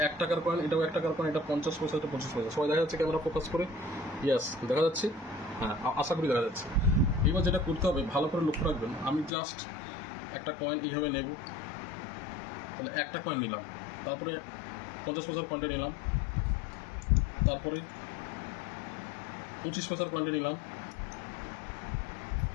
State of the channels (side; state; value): right; drops out; at 9.3 s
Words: 1 টাকার কয়েন, এটাও 1 টাকার কয়েন, এটা 50 পয়সা, এটা 25 পয়সা। সবাই দেখা যাচ্ছে ক্যামেরা ফোকাস করে? ইয়াস, দেখা যাচ্ছে। হ্যাঁ, আশা করি দেখা যাচ্ছে। এবার যেটা করতে হবে, ভালো করে লক্ষ্য রাখবেন। আমি জাস্ট একটা কয়েন এইভাবে নেব। তাহলে একটা কয়েন নিলাম, তারপরে 50 পয়সার কয়েনটা নিলাম, তারপরে 25 পয়সার কয়েনটা নিলাম,